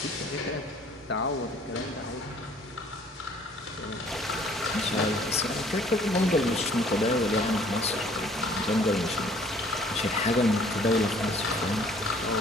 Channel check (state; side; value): normal; both; correlation 0.57